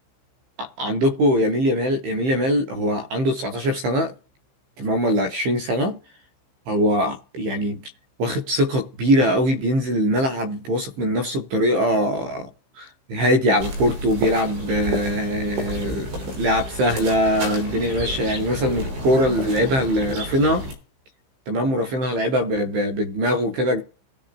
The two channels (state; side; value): late; left; 15 ms